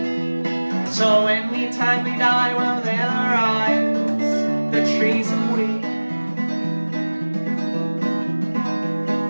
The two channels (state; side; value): inverted; both; correlation -1.00